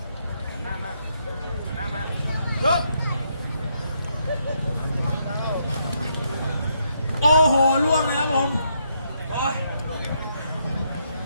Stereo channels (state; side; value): inverted; both; correlation -0.76